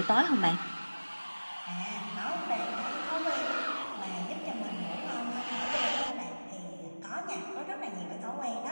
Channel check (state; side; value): inverted; both; correlation -1.00